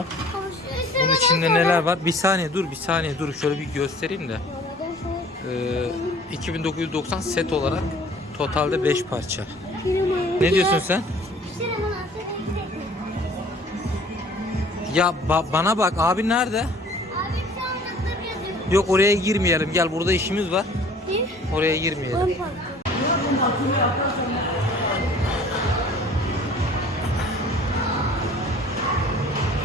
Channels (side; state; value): both; normal; correlation 0.50